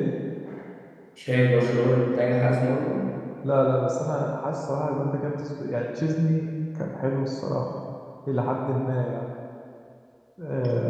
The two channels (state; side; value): identical; both; correlation 1.00